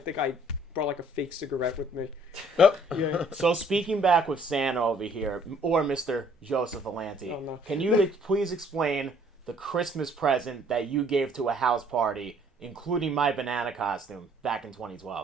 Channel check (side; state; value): both; normal; correlation 0.60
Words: I brought like a fake cigarette with me. Oh. Yeah. So speaking back with Santa over here, or Mr. Joseph Alanti, Oh, no. can you please explain the Christmas present that you gave to a house party, including my banana costume, back in